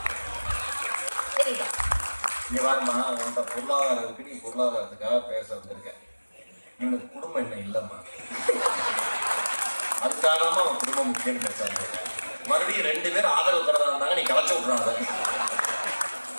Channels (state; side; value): inverted; both; correlation -1.00